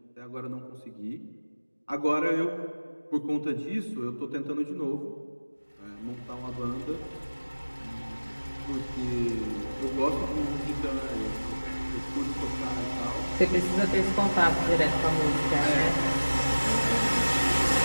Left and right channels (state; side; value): inverted; both; correlation -1.00